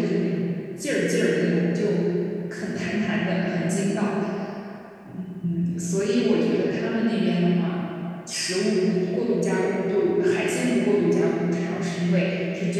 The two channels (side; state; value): both; identical; correlation 1.00